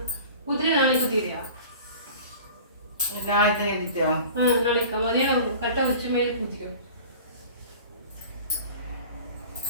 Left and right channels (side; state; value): both; inverted; correlation -0.41